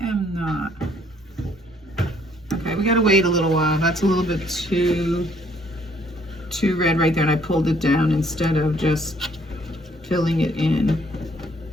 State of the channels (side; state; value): both; normal; correlation 0.64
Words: am not. Okay, we gotta wait a little while. That's a little bit too red right there, and I pulled it down instead of just filling it in.